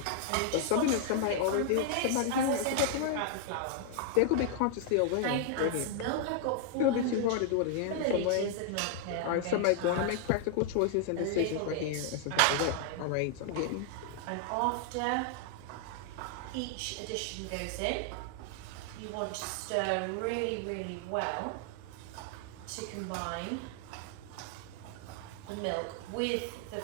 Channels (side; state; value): both; different; correlation 0.00